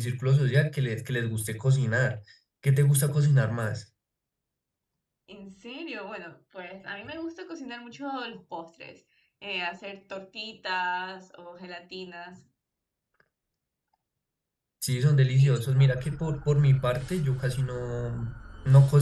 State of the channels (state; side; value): identical; both; correlation 1.00